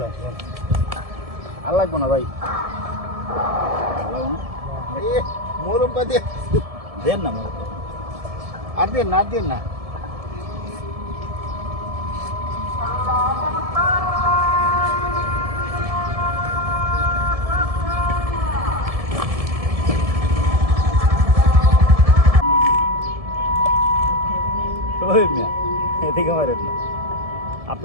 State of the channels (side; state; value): left; late; 1.7 ms